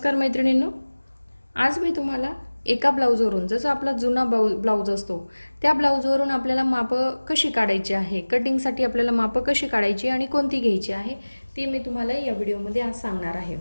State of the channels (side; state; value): both; inverted; correlation -1.00